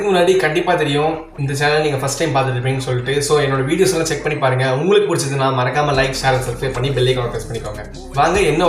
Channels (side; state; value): both; identical; correlation 1.00